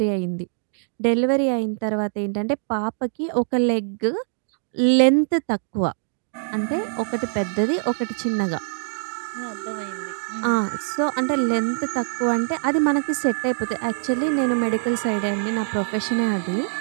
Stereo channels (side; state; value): left; silent; digital silence